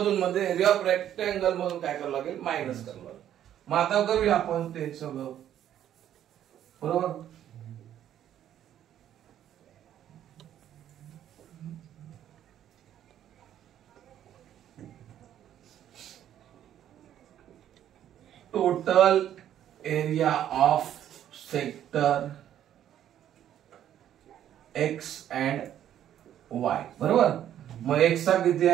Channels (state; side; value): quieter; left; 10.9 dB